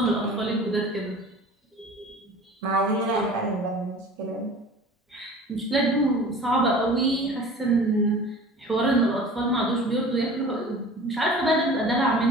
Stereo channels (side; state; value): both; normal; correlation 0.41